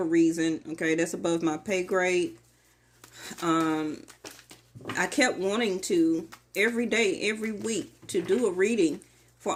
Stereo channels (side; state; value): both; identical; correlation 1.00